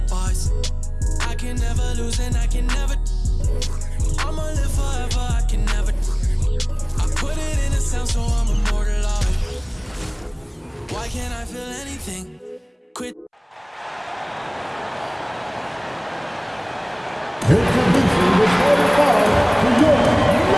I can never lose and I can never. I'ma live forever, I can never. I put it in a sound so I'm immortalized. Why can't I feel anything? Quit. Introducing the starting five to your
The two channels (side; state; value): both; identical; correlation 1.00